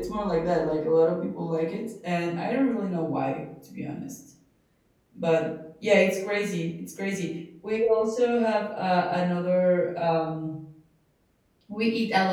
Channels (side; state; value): both; identical; correlation 1.00